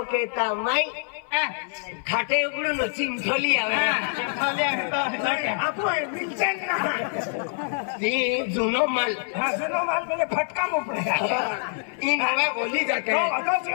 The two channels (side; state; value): right; silent; 56 dB below the other